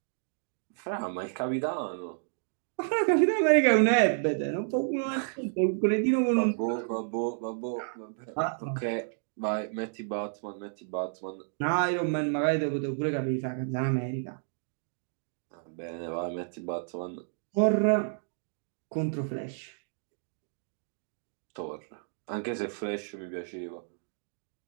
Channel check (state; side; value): silent; left; digital silence